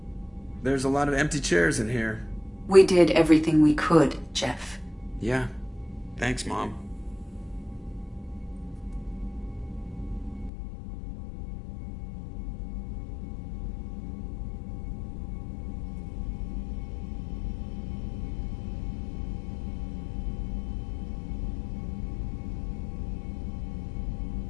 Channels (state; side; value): drops out; right; at 10.5 s